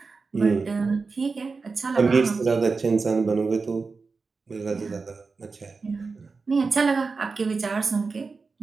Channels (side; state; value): left; quieter; 4.4 dB